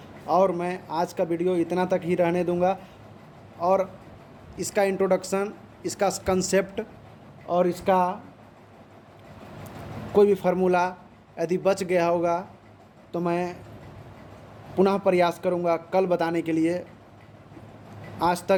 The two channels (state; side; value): identical; both; correlation 1.00